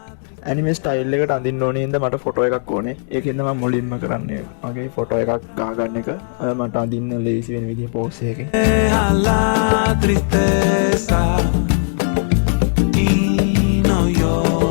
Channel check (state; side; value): silent; right; digital silence